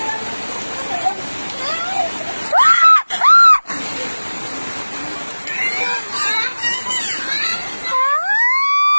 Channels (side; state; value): both; inverted; correlation -1.00